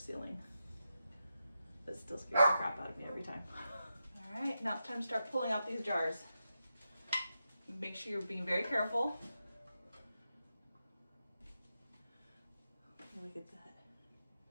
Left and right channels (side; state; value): both; inverted; correlation -0.89